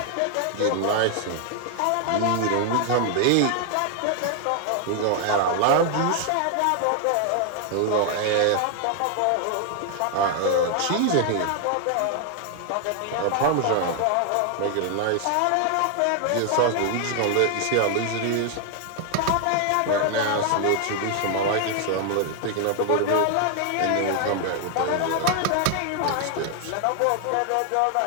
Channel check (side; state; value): both; different; correlation 0.00